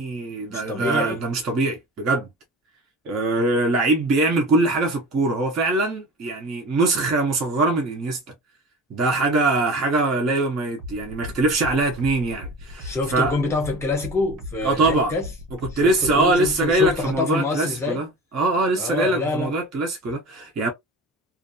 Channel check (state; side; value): normal; both; correlation 0.35